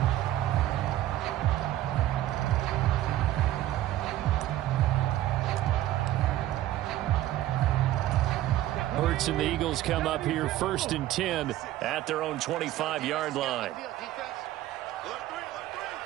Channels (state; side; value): quieter; left; 14.0 dB